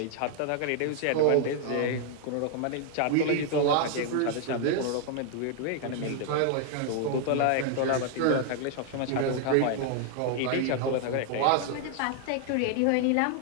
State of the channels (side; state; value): both; different; correlation 0.00